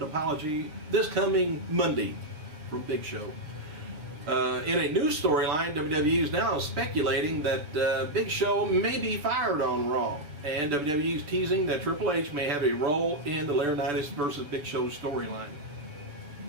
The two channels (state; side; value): late; left; 6.8 ms